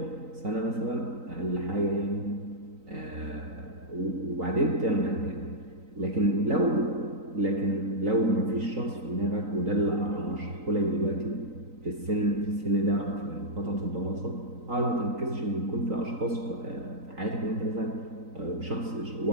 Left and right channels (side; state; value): left; late; 3.9 ms